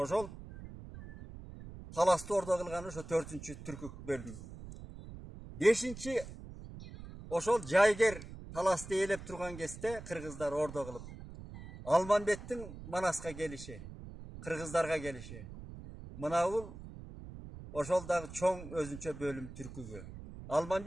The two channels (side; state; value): right; noise; rumble, 13 dB below the sound